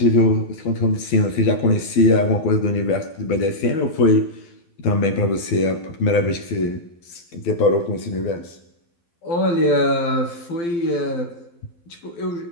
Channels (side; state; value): right; late; 12 ms